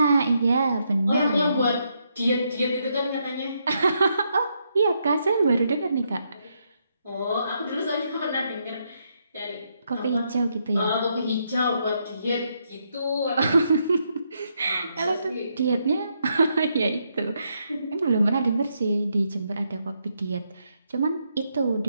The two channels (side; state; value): both; inverted; correlation -0.78